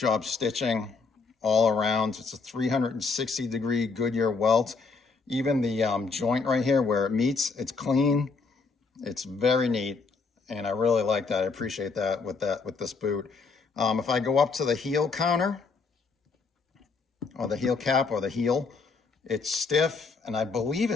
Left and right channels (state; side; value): quieter; right; 4.5 dB